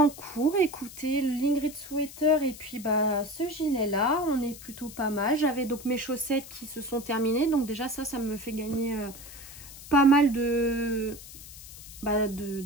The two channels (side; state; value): left; noise; hiss, 15 dB below the sound